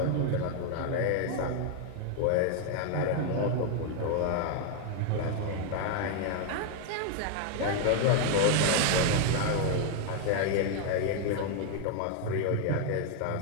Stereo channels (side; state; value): both; different; correlation 0.00